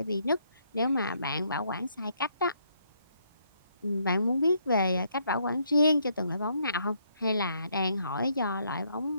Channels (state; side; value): inverted; both; correlation -0.72